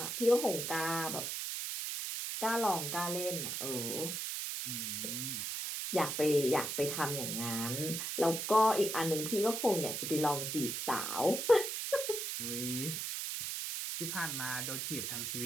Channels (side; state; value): right; noise; hiss, 3 dB below the sound